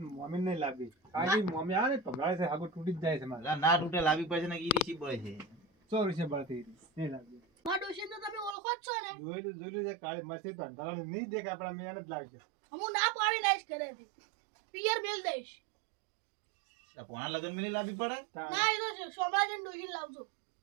મમ્મી નહીં લાવી કારણ કે મમ્મી આવે ને ભમરાય છે હાગું તૂટી જ જાય છે મારે. ના તૂટે લાવી પડશે ને ઈરી સી પડે છે 100 રૂપિયા બળતી નહીં લાવી. મારા ડોશીને તો તમે ઓળખો જ છો ને. જોયેલું છે કાળી મસ્તી તો અંધારાનું નહીં દેખાય આપણા મેં જ લાગે. હું ના પાડી દઈશ ઘરેથી. પિયર મેલ દઈશ. ભણા લગન મેલી લાવી પડે ના એ તો સોમરાજન ડોશી લાવજો.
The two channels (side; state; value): left; drops out; at 8.6 s